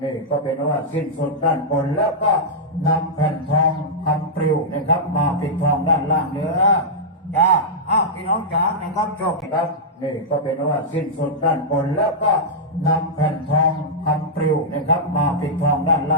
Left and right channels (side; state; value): both; normal; correlation -0.09